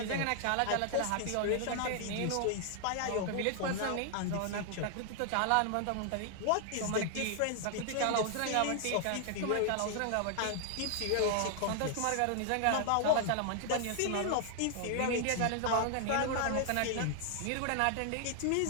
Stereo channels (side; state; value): both; different; correlation 0.00